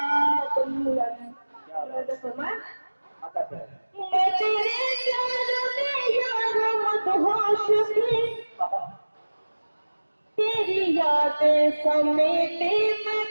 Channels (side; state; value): both; inverted; correlation -1.00